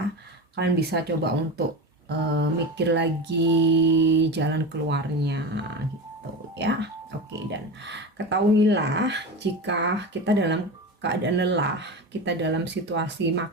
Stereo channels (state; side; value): normal; both; correlation 0.25